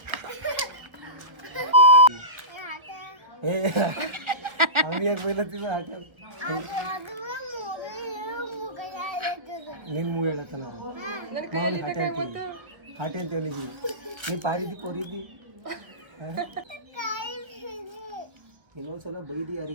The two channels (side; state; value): left; late; 1.1 ms